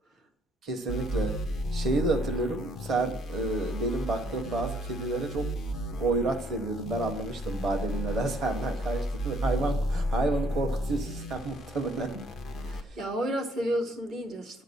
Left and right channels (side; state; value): both; normal; correlation 0.65